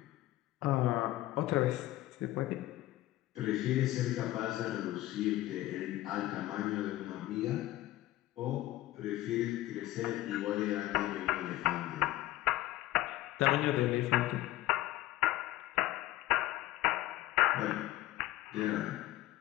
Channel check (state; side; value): quieter; right; 16.1 dB